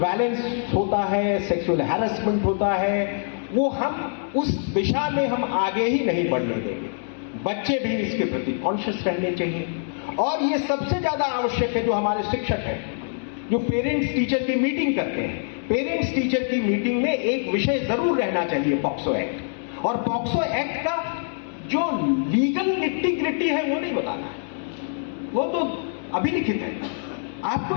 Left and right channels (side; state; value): right; silent; digital silence